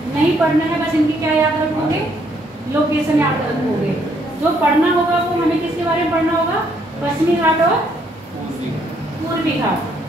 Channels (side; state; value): both; normal; correlation 0.70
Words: नहीं पढ़ना है, बस इनकी क्या याद रखोगे? लोकेशन याद रखोगे। जो पढ़ना होगा वो हमें किसके बारे में पढ़ना होगा? पश्चिमी घाट और पूर्वी घाट।